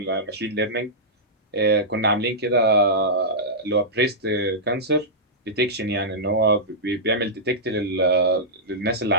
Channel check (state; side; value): normal; both; correlation -0.13